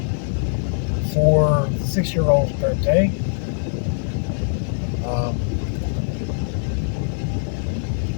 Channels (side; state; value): right; silent; 64 dB below the other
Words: For the 6-year-old's birthday.